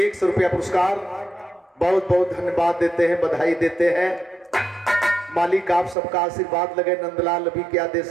रुपया पुरस्कार बहुत बहुत धन्यवाद देते हैं, बधाई देते हैं। मालिक आप सबका आशीर्वाद लगे, नंदलाल अभी क्या दे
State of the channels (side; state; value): left; drops out; at 6.0 s